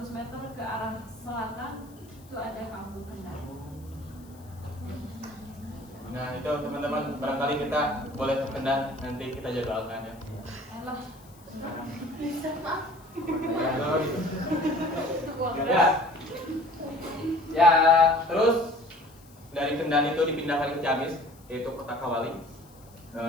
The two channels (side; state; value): left; noise; hiss, 26 dB below the sound